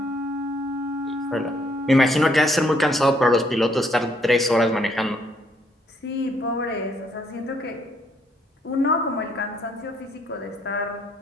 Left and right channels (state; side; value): normal; both; correlation 0.69